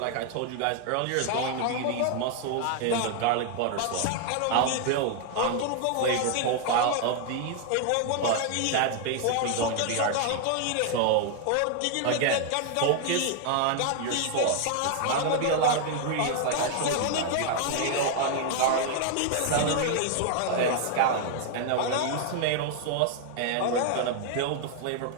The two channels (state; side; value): different; both; correlation 0.00